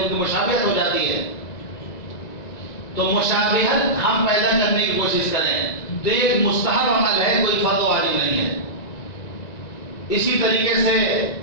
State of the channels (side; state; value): right; late; 1.9 ms